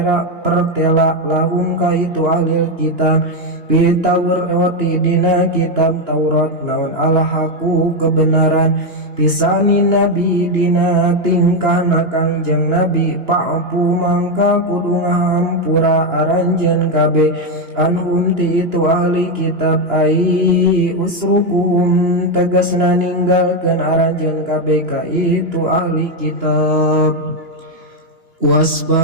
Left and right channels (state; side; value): late; left; 2.9 ms